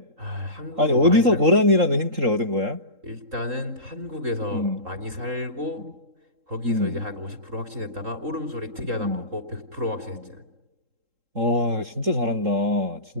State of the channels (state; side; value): late; left; 3.7 ms